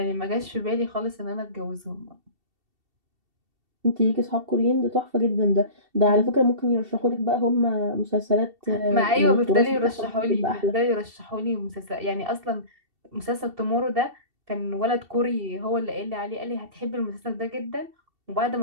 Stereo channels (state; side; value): late; left; 2.7 ms